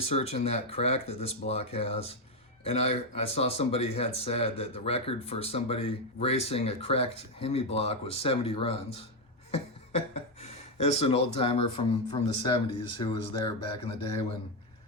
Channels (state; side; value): normal; both; correlation 0.05